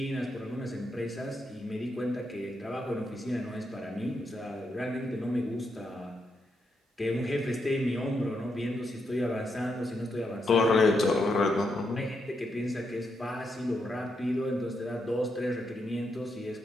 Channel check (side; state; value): both; normal; correlation 0.81